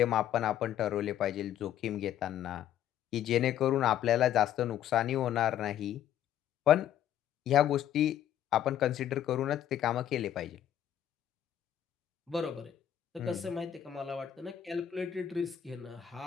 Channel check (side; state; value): right; quieter; 10.8 dB